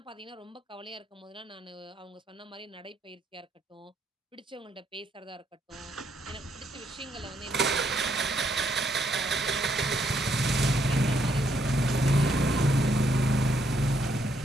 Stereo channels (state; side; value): normal; both; correlation 0.73